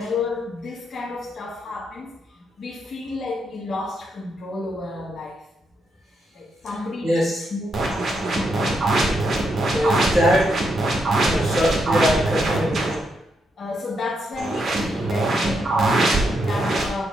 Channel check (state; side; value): normal; both; correlation 0.80